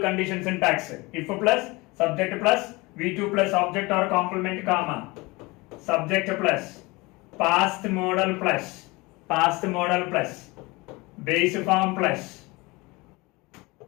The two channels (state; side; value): quieter; right; 23.8 dB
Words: syntax. If plus, subject plus, V2 plus, object or complement, comma. Subject plus, past modal plus, base form plus,